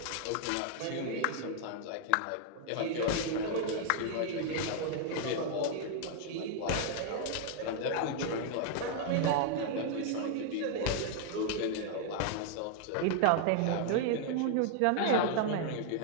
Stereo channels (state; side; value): different; both; correlation 0.00